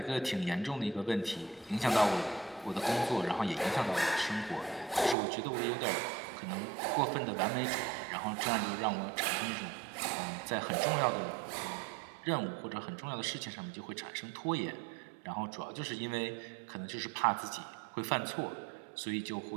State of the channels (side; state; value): left; drops out; at 5.2 s